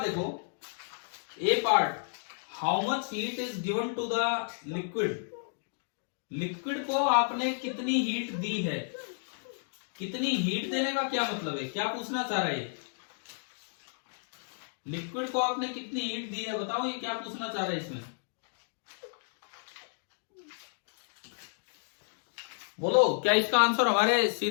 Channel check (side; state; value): right; silent; digital silence